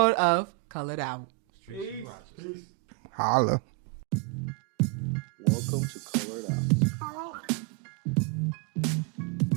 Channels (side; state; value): left; quieter; 25.5 dB